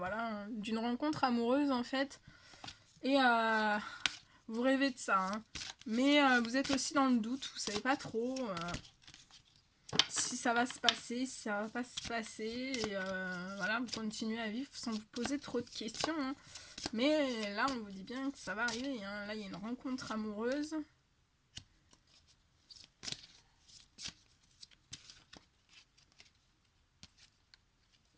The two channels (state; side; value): identical; both; correlation 1.00